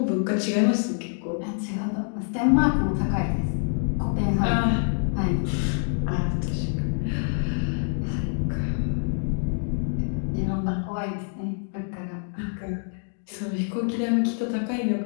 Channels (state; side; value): silent; right; digital silence